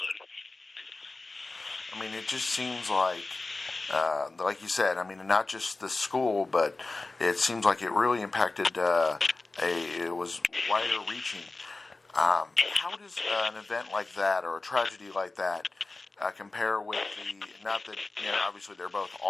It just seems like you said, not just the school, but it seems like it really impacted, it was wider reaching. How does an event like that, or a tragedy like that, compare with not that, obviously they're both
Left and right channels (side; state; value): right; quieter; 3.4 dB